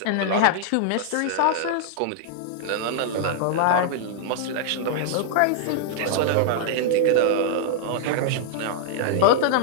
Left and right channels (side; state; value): both; different; correlation -0.01